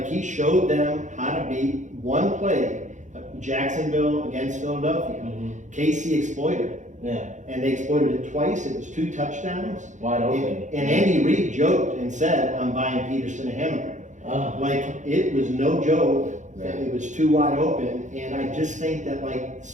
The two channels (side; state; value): left; late; 0.35 ms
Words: he showed them how to beat one play, Jacksonville against Philadelphia. KC exploited it, Yeah, and they exploited it twice. It was 2 touchdowns. wide open. And Andy Reid joked and said, "I'm buying Peterson a hamburger." Like, it was no joke. It was too wide open, and I just think that like